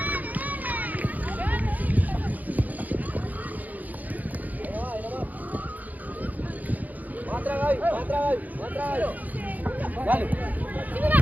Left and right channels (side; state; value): left; late; 0.080 ms